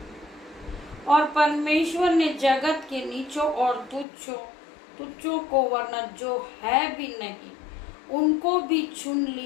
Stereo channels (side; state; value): right; drops out; at 4.0 s